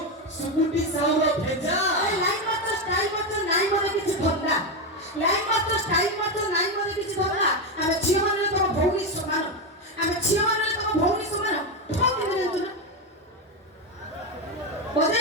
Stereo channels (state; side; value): normal; both; correlation 0.10